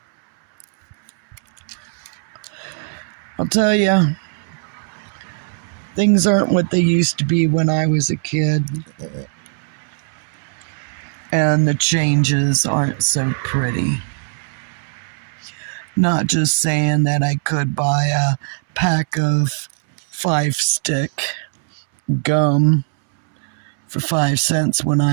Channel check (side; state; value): left; silent; 65 dB below the other